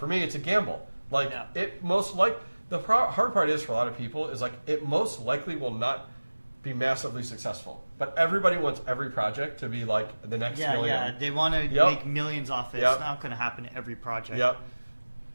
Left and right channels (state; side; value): inverted; both; correlation -1.00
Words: me, it's a gamble. It most the hard part is for a lot of people is it most likely will not be massively successful. But everybody wants every project to be the next million. Yeah, they want to make millions off it. Yep. It's not going to happen to every project. Yep.